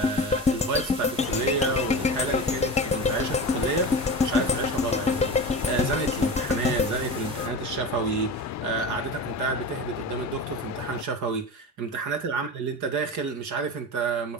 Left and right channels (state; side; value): normal; both; correlation 0.28